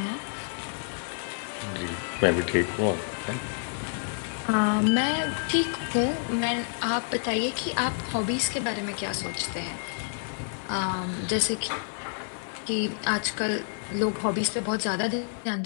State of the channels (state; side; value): silent; right; digital silence